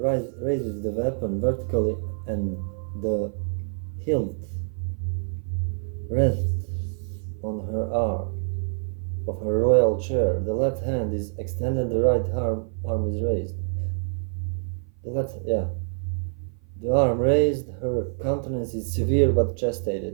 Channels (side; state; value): left; silent; 56 dB below the other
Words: raises the weapon vertically and the hilt rests on her arm of her royal chair. The left hand is extended, the right arm is raised. The arm raised, her countenance is severe but